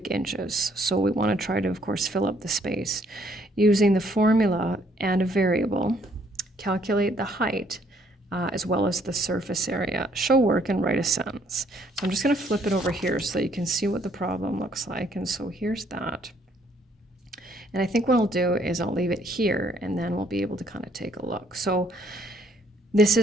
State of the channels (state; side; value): normal; both; correlation 0.66